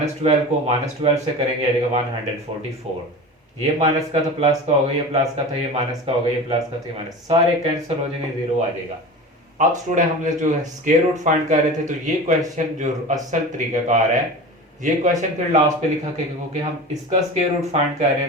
को -12 से करेंगे आएगा 144, ये माइनस का था प्लस का होगा, ये प्लस का था ये माइनस का होगा, ये प्लस का था ये माइनस, सारे कैंसिल हो जाएंगे, जीरो आ जाएगा। अब स्टूडेंट हमने जो है स्क्वायर रूट फाइंड कर रहे थे, तो ये क्वेश्चन जो असल तरीकाकार है, ये क्वेश्चन फिर लास्ट पे लिखा के, क्योंकि हम इसका स्क्वायर रूट फाइंड कर रहे हैं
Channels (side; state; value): both; normal; correlation 0.32